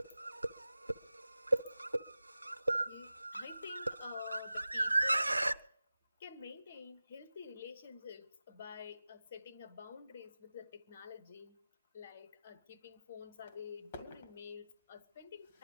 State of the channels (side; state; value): both; inverted; correlation -0.95